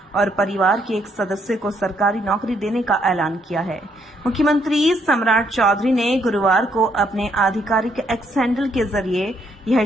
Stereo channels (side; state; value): both; normal; correlation 0.72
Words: और परिवार के एक सदस्य को सरकारी नौकरी देने का ऐलान किया है। मुख्यमंत्री सम्राट चौधरी ने गुरुवार को अपने आधिकारिक एक्स हैंडल के जरिए यह